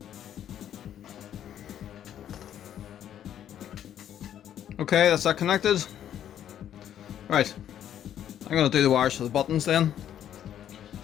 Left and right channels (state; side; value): quieter; right; 10.4 dB